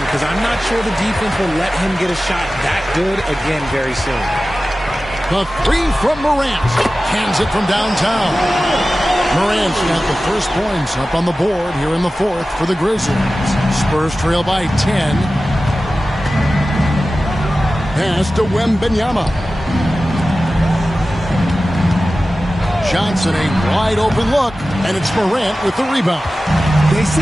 because I'm not sure the defense will let him get a shot that good again very soon. The three from Morant. Hands it from downtown. Morant's got the first points up on the board here in the fourth for the Grizzlies. Spurs trail by 10. Pass to Wembanyama. Johnson, a wide open look, and it's Morant with the rebound. They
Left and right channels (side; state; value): both; normal; correlation 0.95